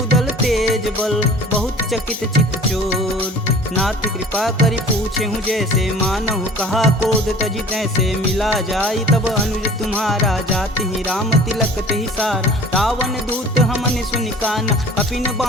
तेज बल, बहुत चकित चित चोर, नाथ कृपा करि पूछे हूँ जैसे, मानहु कहा क्रोध तजि तैसे, मिला जाई तब अनुज तुम्हारा, जाति ही राम तिलक तेहि सार, रावण दूत हमन सुनि काना, कपिन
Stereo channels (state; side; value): normal; both; correlation 0.45